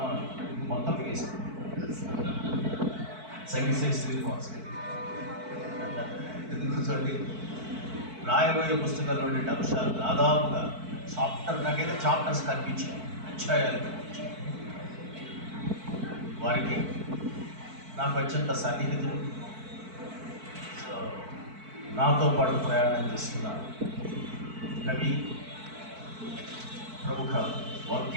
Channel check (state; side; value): late; left; 4.5 ms